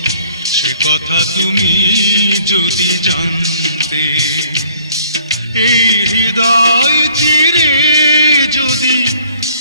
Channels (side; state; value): both; inverted; correlation -0.58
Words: সে কথা তুমি যদি জানতে। এই হৃদয় চিরে যদি